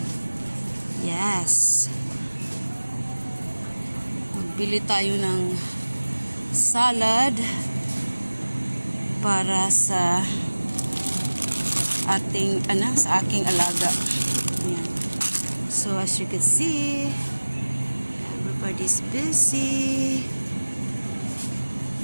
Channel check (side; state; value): both; inverted; correlation -1.00